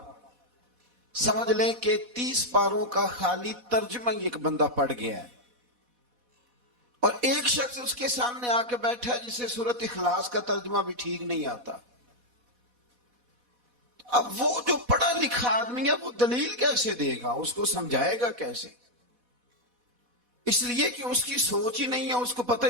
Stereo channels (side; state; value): left; late; 4.1 ms